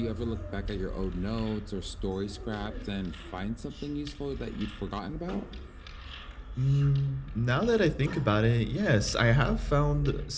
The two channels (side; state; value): both; identical; correlation 1.00